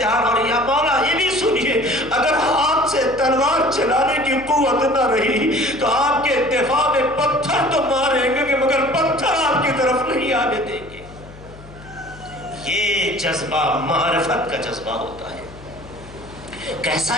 اور یا مولا یہ بھی سنیے اگر ہاتھ سے تلوار چلانے کی قوت نہ رہی تو آپ کے دفاع میں پتھر تو ماریں گے مگر پتھر آپ کی طرف نہیں آنے دیں گے. یہ جذبہ معرفت کا جذبہ ہوتا ہے.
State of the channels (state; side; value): noise; left; hum, 19 dB below the sound